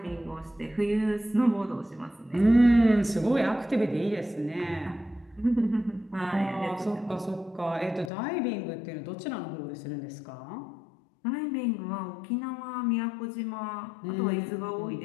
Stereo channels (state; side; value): drops out; right; at 8.1 s